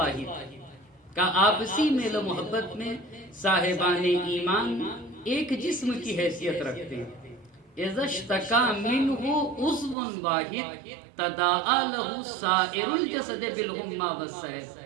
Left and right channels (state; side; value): drops out; left; at 10.0 s